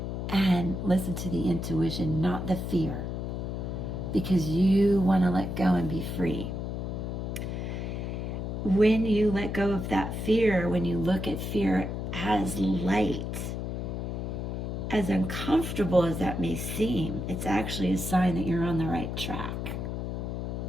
and listen to the intuition, not the fear, because you want to let go and be free. When you let go of that fear, when you look at fear as light, as uncomfortable as that may seem, it's actually a sign that you're on the right track.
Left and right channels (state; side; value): noise; left; hum, 4 dB below the sound